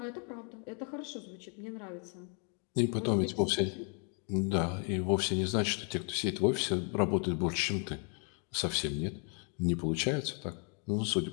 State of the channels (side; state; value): right; quieter; 39.4 dB